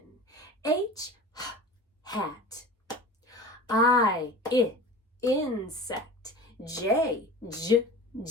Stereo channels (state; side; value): normal; both; correlation 0.36